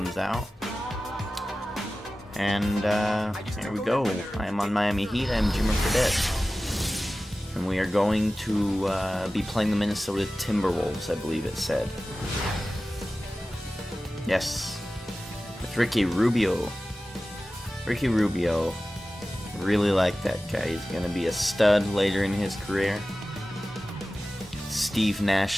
out. And here we go. I am on Miami Heat. I am Jimmer Fredette. And we are going to be playing the Minnesota Timberwolves, I believe it said. Yes. With Ricky Rubio. Ricky Rubio. Really like that guy. He's going to be a stud later in his career. Steve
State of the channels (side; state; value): both; normal; correlation 0.96